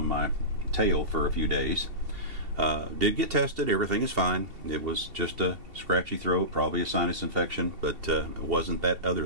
my tail for a few days. Did get tested, everything is fine. It was just a scratchy throat, probably a sinus infection, but it wasn't that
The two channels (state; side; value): late; left; 2.7 ms